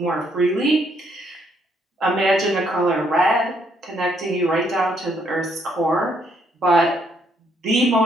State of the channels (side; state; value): both; normal; correlation 0.71